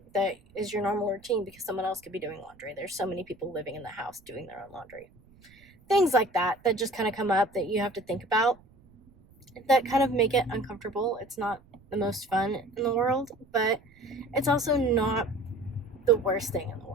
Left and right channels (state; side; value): noise; right; rumble, 28 dB below the sound